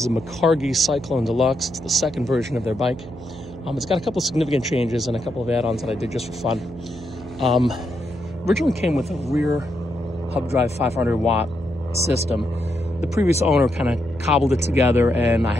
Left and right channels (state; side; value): noise; right; hum, 15 dB below the sound